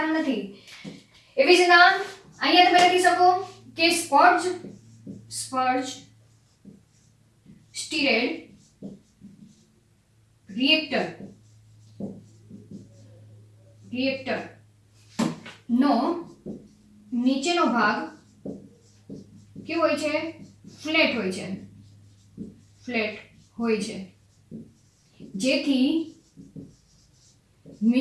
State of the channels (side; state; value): both; identical; correlation 1.00